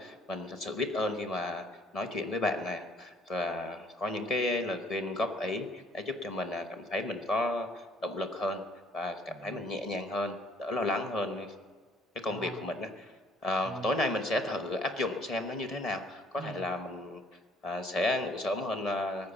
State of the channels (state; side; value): normal; both; correlation 0.60